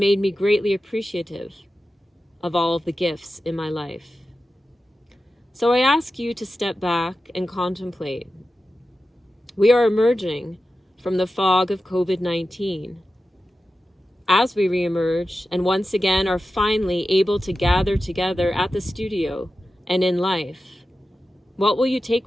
me greatly appreciative of all of the gifts in my life. So I ask you to step back and contemplate. We are emerging from the fog of COVID-19. As we reemerge and once again are finally able to gather together at the studio and in life, what will you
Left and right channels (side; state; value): both; normal; correlation 0.93